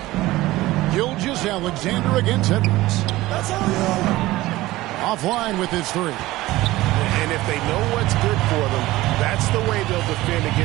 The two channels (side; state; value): left; quieter; 17.8 dB